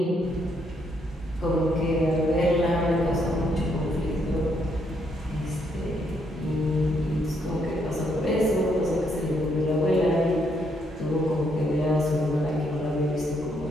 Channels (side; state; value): both; normal; correlation 0.74